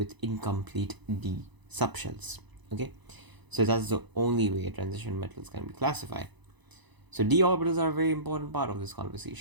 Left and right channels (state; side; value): late; left; 1.0 ms